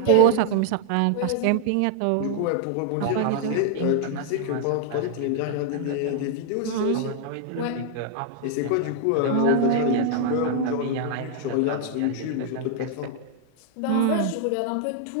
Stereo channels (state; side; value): different; both; correlation -0.01